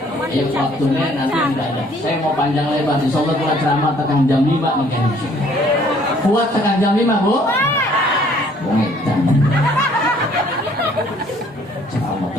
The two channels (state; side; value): normal; both; correlation 0.60